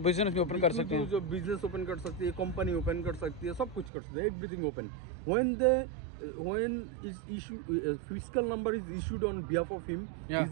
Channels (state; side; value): drops out; left; at 3.9 s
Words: बिजनेस भी ओपन कर सकते हैं, जो बिजनेस ओपन कर सकती है, कंपनी ओपन कर सकती है, सब कुछ कर सकते हैं, everything open. when is issue fiscal number is issued on behalf of him, Yeah.